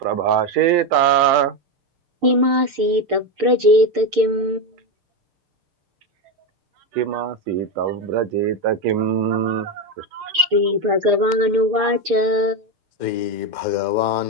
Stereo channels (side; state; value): left; late; 6.7 ms